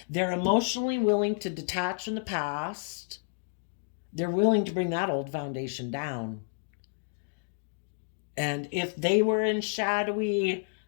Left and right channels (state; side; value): silent; right; digital silence